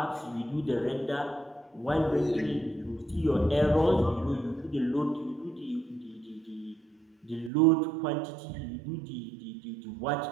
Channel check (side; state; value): left; drops out; at 7.5 s